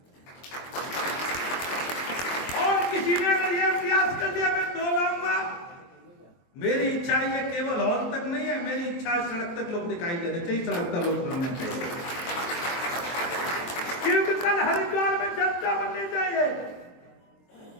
और किसी ने अगर यह प्रयास कर दिया मैं 2 लाऊंगा, मेरी इच्छा ये केवल हॉल तक नहीं है, मेरी इच्छा सड़क तक लोग दिखाई देने चाहिए, सड़क तक लोग बनने चाहिए। क्योंकि कल हरिद्वार में जनता बननी चाहिए।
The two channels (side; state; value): right; late; 23 ms